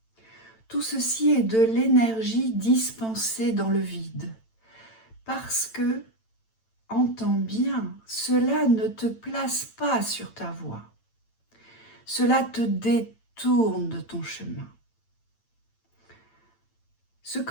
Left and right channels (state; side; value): late; right; 9.0 ms